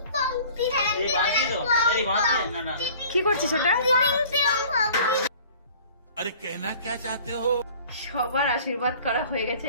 কি করছিস ওটা? अरे कहना क्या चाहते हो? সবার আশীর্বাদ করা হয়ে গেছে,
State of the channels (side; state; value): both; inverted; correlation -0.49